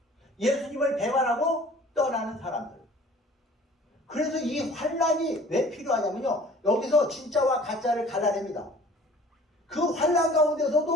예수님을 배반하고 떠나는 사람들. 그래서 이 환란이 왜 필요하냐면요. 여기서 진짜와 가짜를 갈라냅니다. 그 환란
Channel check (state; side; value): normal; both; correlation 0.49